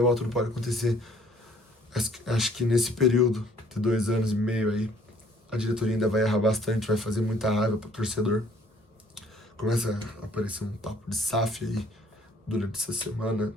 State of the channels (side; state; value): both; normal; correlation 0.59